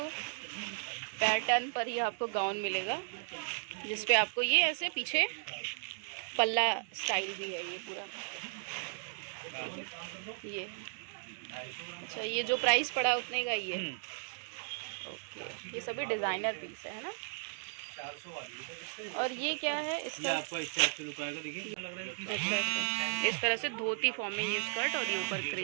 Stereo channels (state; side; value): silent; left; digital silence